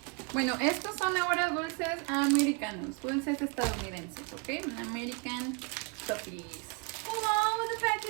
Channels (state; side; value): quieter; left; 31.1 dB